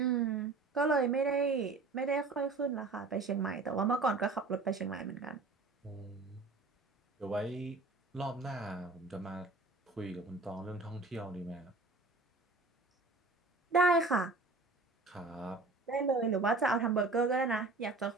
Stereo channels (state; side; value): quieter; left; 3.6 dB